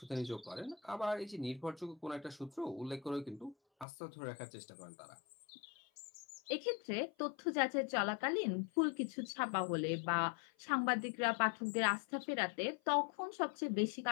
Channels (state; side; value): drops out; right; at 3.9 s